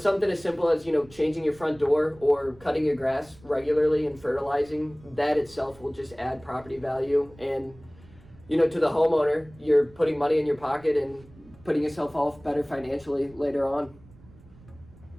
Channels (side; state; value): right; noise; rumble, 24 dB below the sound